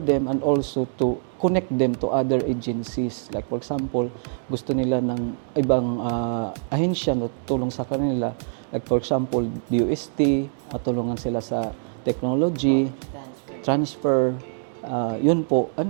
and also to connect them to other agencies. Like, for example, gusto nila ng ibang ahensya na tulong sa kanila. Like, for example, DOST, matulungan sila sa technology transfer, yun po.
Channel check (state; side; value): silent; left; 60 dB below the other